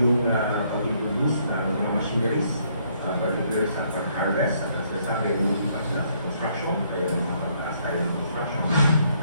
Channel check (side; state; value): both; inverted; correlation -0.69